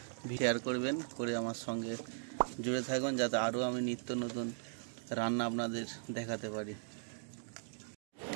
শেয়ার করবেন, করে আমার সঙ্গে জুড়ে থাকুন যাতে আরও আমি নিত্য নতুন রান্না আপনাদের দেখাতে পারি।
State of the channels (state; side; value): silent; left; digital silence